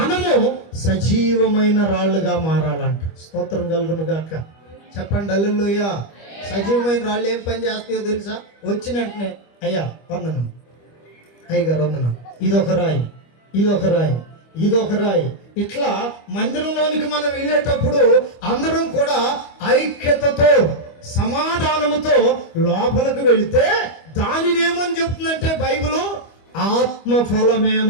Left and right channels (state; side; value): late; right; 25 ms